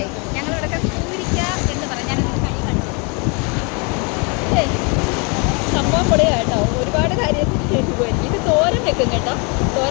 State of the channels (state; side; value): quieter; right; 32.7 dB